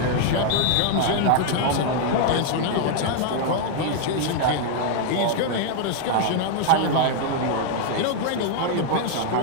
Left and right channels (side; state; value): both; different; correlation 0.00